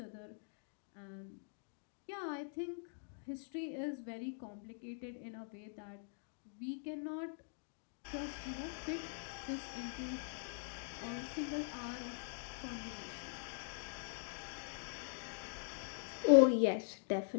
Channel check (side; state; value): right; silent; digital silence